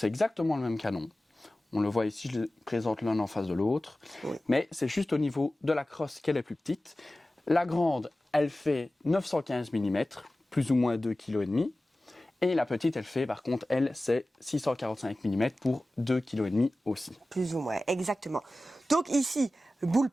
exactement le même canon. On le voit ici, je les présente l'un en face de l'autre. Oui. Mais c'est juste au niveau de la crosse qu'elle est plus petite. La grande, elle fait 915 mm, plus ou moins 2,5 kg. Et la petite, elle fait, par contre, elle, c'est 645 mm pour 2,5 kg aussi. Plus ou moins, exactement. Donc ici, le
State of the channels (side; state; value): both; normal; correlation 0.96